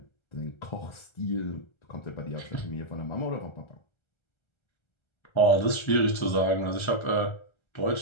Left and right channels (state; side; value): late; right; 1.3 ms